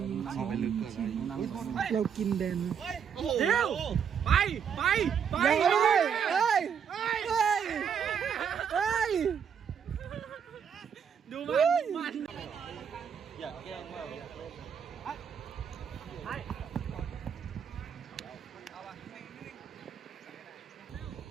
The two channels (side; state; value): left; quieter; 7.5 dB